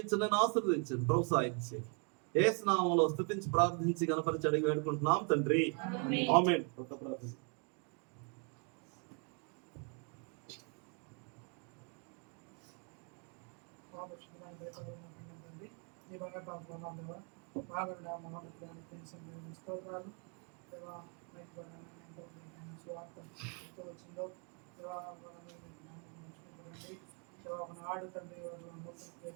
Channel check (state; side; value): quieter; left; 38.1 dB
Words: ఆశీర్వదించండి, ప్రోత్సహించండి. యేసు నామములో స్తుతించి ప్రార్థించి గణపరిచి అడిగి వేడుకుంటున్నాం తండ్రి, ఆమేన్. ఒక ప్రార్థన. ఆడు తండ్రి